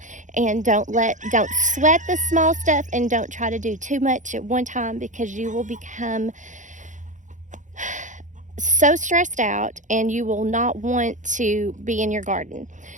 and don't sweat the small stuff, and don't try to do too much at one time because you will become so stressed out and you will not want to be in your garden.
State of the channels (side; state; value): left; late; 0.36 ms